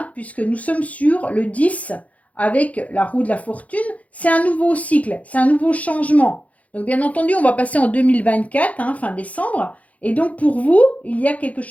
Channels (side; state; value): right; late; 0.068 ms